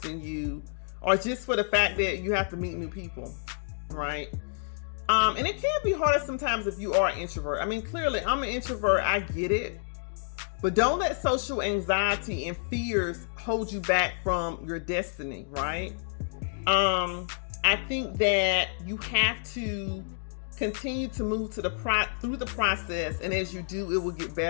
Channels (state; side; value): silent; right; digital silence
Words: you, or just for the fact that you have to meet new people, right? And it can be harder sometimes if you are an introvert. I mean, clearly, I'm an introvert. I get it. But don't let social anxiety and fears hold you back from your destiny, right? I think that you have to continue to move through the process, and as you do, it will get